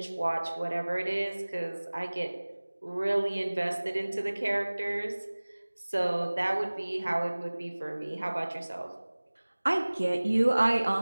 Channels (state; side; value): inverted; both; correlation -1.00